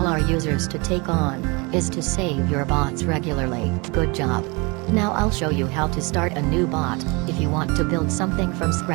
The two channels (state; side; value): quieter; left; 27.8 dB